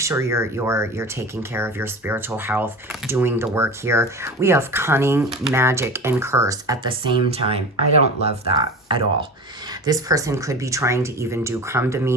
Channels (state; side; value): normal; both; correlation 0.32